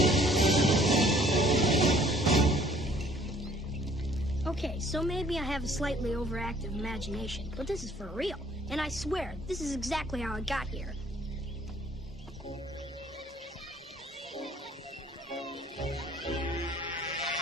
Okay, so maybe I have a slightly overactive imagination, but this is for real. And I swear, this is exactly how I got here.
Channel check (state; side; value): normal; both; correlation 0.58